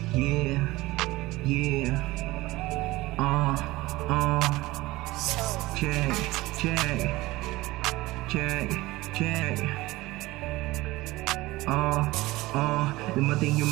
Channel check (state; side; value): quieter; left; 19.4 dB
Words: Yeah, yeah. Check, check, check, check. Dumating yung